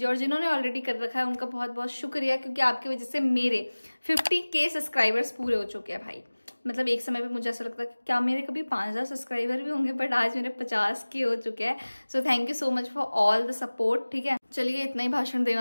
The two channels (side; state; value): both; inverted; correlation -1.00